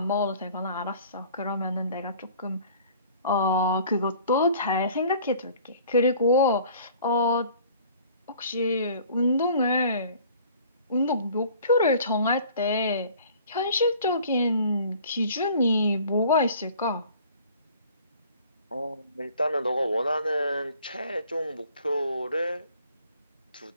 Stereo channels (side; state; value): both; inverted; correlation -0.51